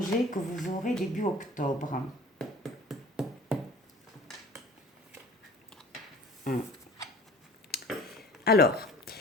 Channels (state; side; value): normal; both; correlation 0.45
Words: que vous aurez début octobre. Alors,